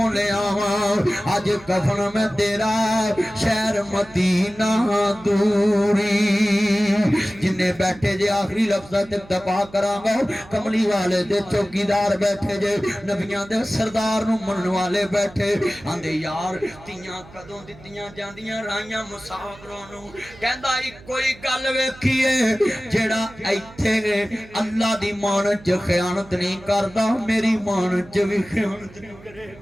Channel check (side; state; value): right; noise; hum, 22 dB below the sound